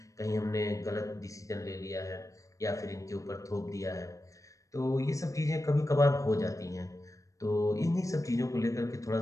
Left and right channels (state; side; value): late; right; 0.16 ms